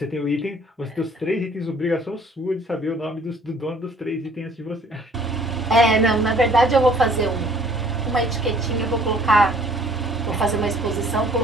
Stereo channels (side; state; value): both; normal; correlation 0.57